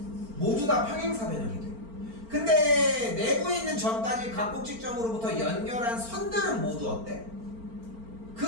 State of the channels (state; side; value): late; left; 4.4 ms